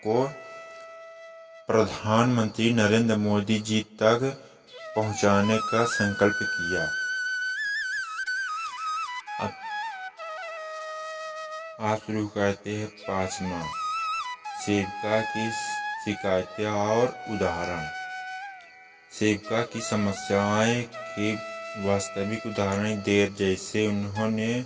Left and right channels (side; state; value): both; identical; correlation 1.00